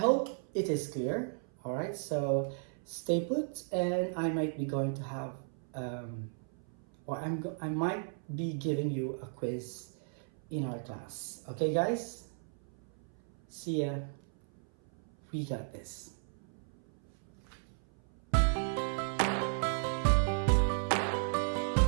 it is clear. All right, so stay put, and I might be going to have, I might be giving you a quiz in our class. Okay, guys? See ya. We got this.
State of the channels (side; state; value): left; silent; 54 dB below the other